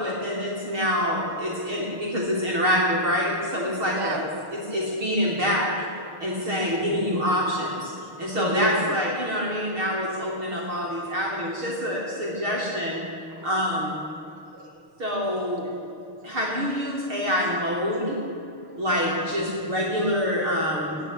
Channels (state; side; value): late; left; 6.5 ms